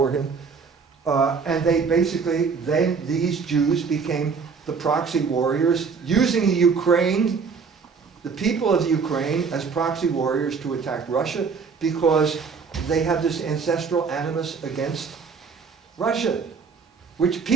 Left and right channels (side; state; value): left; quieter; 5.4 dB